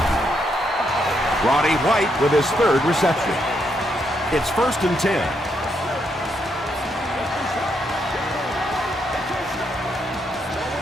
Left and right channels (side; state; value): both; normal; correlation 0.78